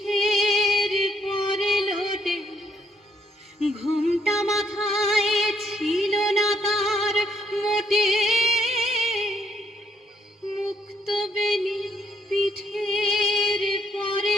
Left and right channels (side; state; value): both; normal; correlation 0.70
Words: পরে লোটে। ঘোমটা মাথায় ছিল না তার মোটে, মুক্ত বেনি পিঠের পরে